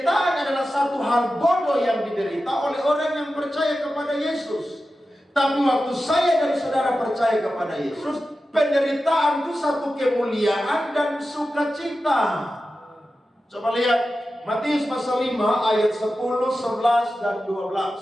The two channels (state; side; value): normal; both; correlation 0.93